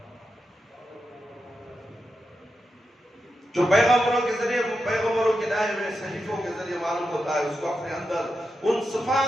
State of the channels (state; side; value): normal; both; correlation 0.88